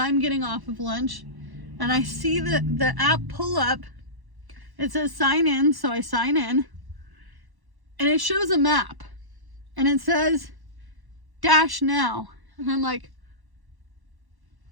getting off of lunch. And I see the app pull up. It says sign in, so I sign in. And it shows a map. And it says dash now. And I'm like,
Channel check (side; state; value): left; late; 1.1 ms